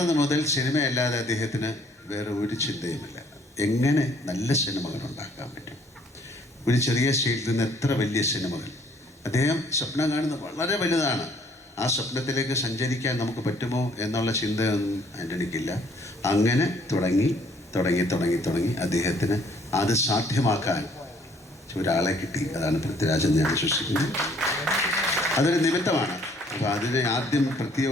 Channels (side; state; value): both; normal; correlation 0.62